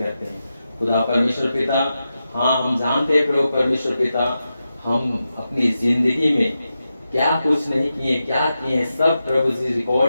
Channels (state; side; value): inverted; both; correlation -0.90